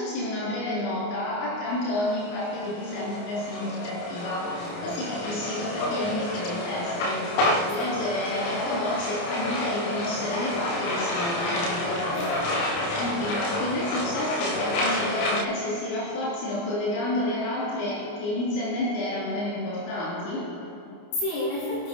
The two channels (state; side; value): late; right; 29 ms